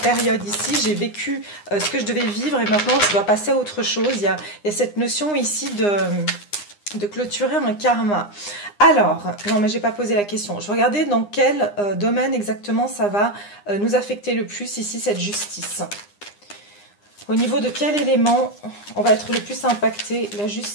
ici, j'ai vécu ce que je devais vivre et maintenant je dois passer à autre chose. Il y a cette notion ici de clôturer un karma. Alors, non mais j'ai pas posé la question. Je regardais dans quel domaine exactement ça va nous affecter le plus ici, cette justice. Au niveau de quel élément on va être le plus impacté? La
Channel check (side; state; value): right; late; 9.8 ms